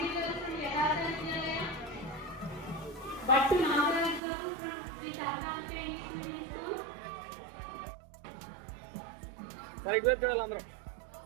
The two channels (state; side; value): drops out; left; at 4.2 s